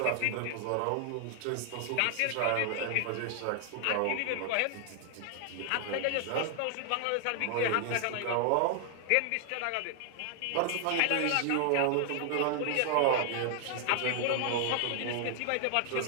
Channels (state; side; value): different; both; correlation 0.00